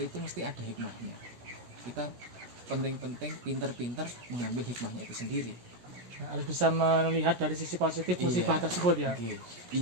itu mesti ada hikmahnya. Kita penting-penting pinter-pinter mengambil hikmahnya itu sendiri. Nah, harus bisa melihat dari sisi positif musibah tersebut ya.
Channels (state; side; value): late; left; 17 ms